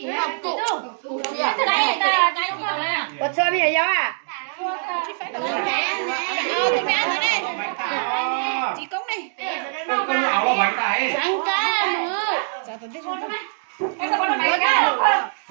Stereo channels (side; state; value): left; silent; digital silence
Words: Có chơi bây giờ gió à? Tôi mẹ rồi đây chị Công này Con áo là bánh này. ăn cá nữa